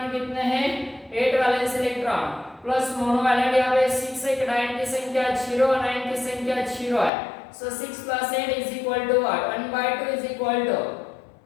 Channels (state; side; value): drops out; right; at 7.1 s